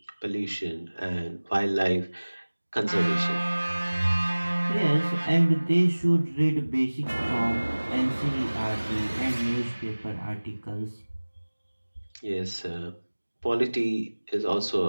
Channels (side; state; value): both; inverted; correlation -1.00